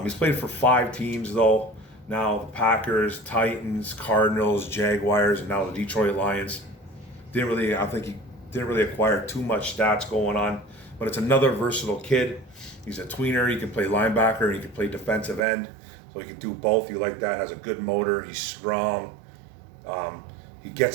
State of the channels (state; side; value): drops out; left; at 15.4 s